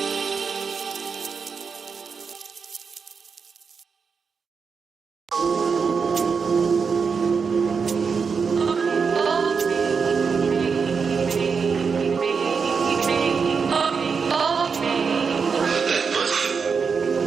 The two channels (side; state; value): left; quieter; 5.6 dB